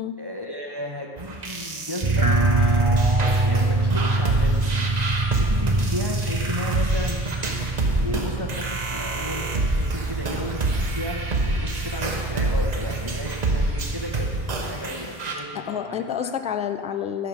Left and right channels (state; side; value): late; left; 1.9 ms